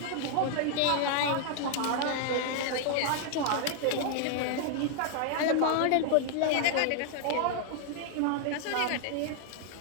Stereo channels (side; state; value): both; different; correlation 0.00